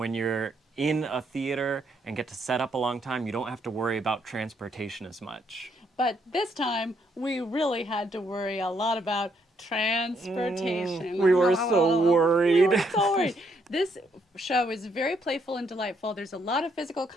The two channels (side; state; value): both; normal; correlation 0.73